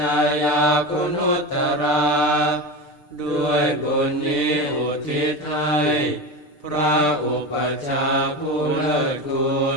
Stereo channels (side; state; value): right; late; 6.7 ms